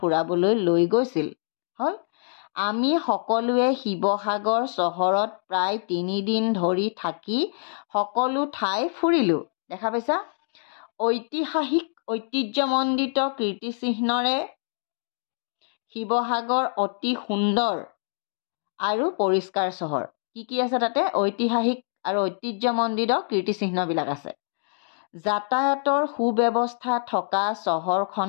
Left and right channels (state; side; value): silent; right; digital silence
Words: লৈ গৈছিল। হ'ল, আমি সকলোৱে শিৱসাগৰ চহৰত প্ৰায় 3 দিন ধৰি থাকি সকলো ঠাই ফুৰিলোঁ। দেখা পাইছা, ঐতিহাসিক ঐতিহ্যমণ্ডিত কীৰ্তিচিহ্নৰে শিৱসাগৰ অতি সুন্দৰ আৰু পৰিষ্কাৰ চহৰ। কি আছে তাতে? ঐতিহাসিক আৰু ঐতিহ্যমণ্ডিত কীৰ্তিচিহ্নবিলাক আছে। যাতায়াতৰ সুব্যৱস্থা থকা